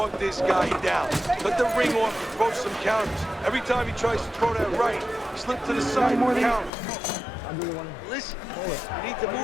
this guy down. Cut the ring off and throw some counters. Every time he tries to throw that right, slip to the side and counter. Listen, you need to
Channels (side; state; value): right; drops out; at 6.7 s